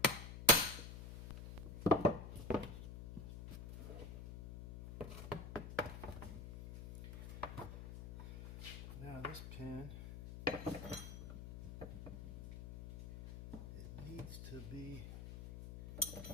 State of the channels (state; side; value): noise; left; hum, 9 dB below the sound